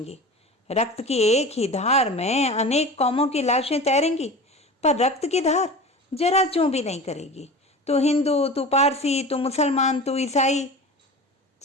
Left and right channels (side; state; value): both; normal; correlation 0.34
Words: रक्त की एक ही धार में अनेक कौमों की लाशें तैरेंगी, पर रक्त की धार जरा चूं भी नहीं करेगी। तू हिंदू, तू पारसी, तू मुसलमान, तू ईसाई,